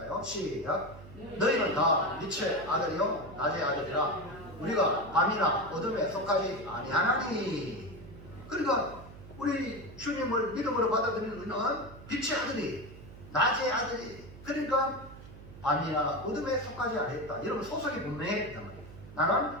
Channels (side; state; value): right; noise; hum, 16 dB below the sound